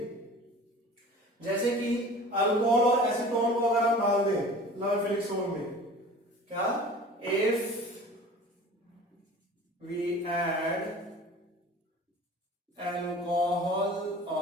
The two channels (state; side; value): normal; both; correlation 0.42